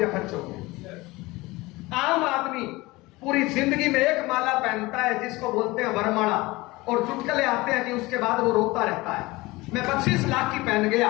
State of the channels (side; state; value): right; quieter; 21.3 dB